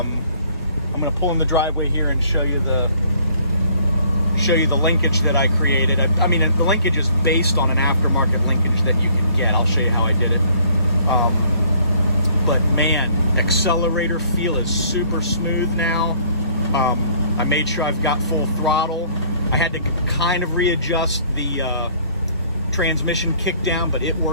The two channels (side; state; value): both; inverted; correlation -0.59